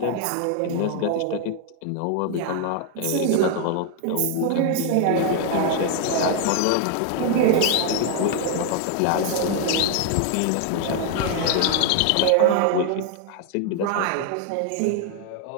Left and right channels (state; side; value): different; both; correlation 0.00